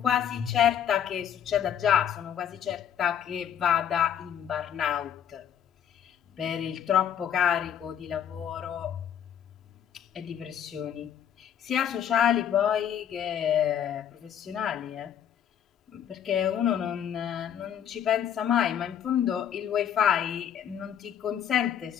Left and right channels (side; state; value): right; quieter; 9.3 dB